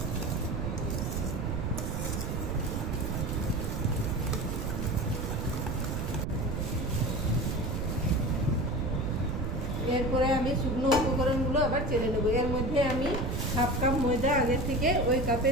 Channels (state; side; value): noise; right; rumble, 2 dB below the sound